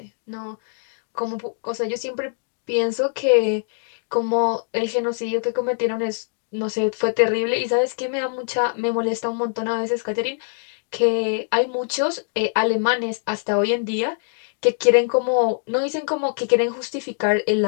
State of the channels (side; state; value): right; silent; digital silence